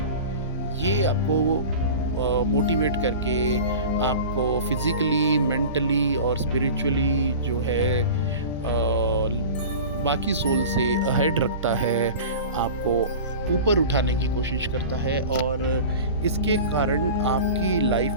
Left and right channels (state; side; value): inverted; both; correlation -0.35